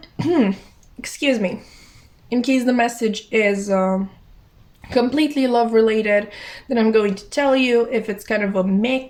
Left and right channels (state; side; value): identical; both; correlation 1.00